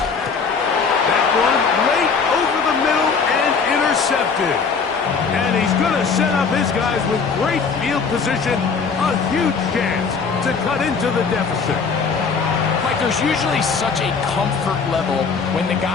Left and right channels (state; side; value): quieter; right; 5.3 dB